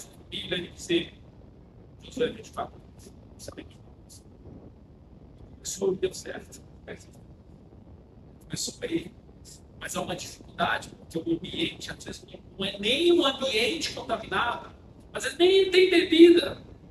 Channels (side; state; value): both; identical; correlation 1.00